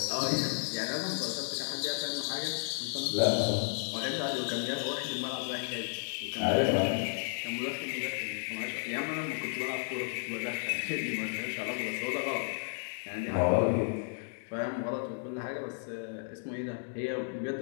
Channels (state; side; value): silent; right; digital silence